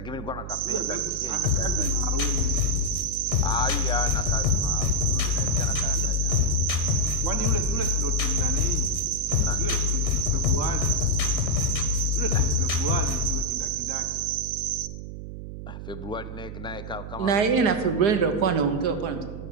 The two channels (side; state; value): right; noise; hum, 10 dB below the sound